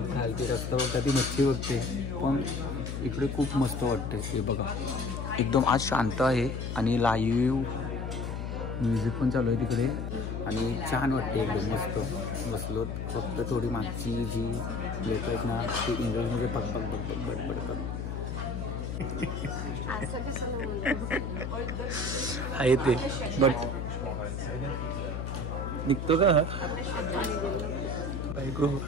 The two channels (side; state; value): left; noise; hum, 4 dB below the sound